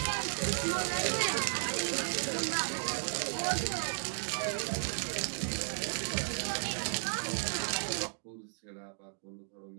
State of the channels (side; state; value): left; silent; digital silence